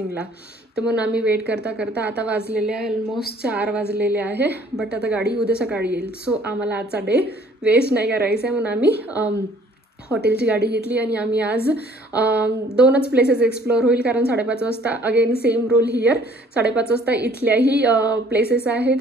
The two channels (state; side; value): normal; both; correlation 0.57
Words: तर म्हणून आम्ही वेट करता करता आता वाजलेले आहे ऑलमोस्ट 4 वाजलेले आहे. बट आता गाडी उद्या सकाळी येईल. सो आम्हाला आजचा डे वेस्ट नाही करायचा आहे म्हणून आम्ही हॉटेलची गाडी घेतली आणि आम्ही आज 2च प्लेसेस एक्सप्लोअर होईल. कारण 5:30 वाजता अगेन सेम रूल हिअर, 5:30 वाजता इथल्याही प्लेसेस आहे